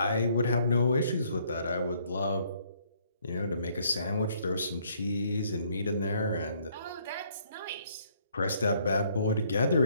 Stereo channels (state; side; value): inverted; both; correlation -0.66